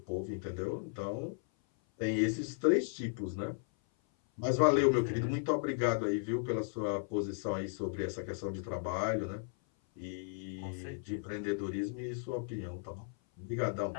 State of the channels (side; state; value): right; silent; 54 dB below the other